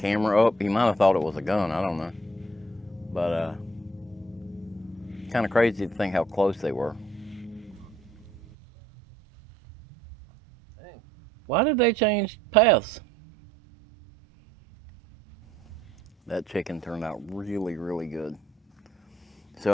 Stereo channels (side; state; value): both; normal; correlation 0.65